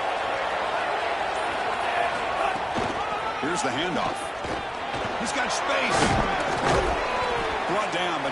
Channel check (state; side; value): identical; both; correlation 1.00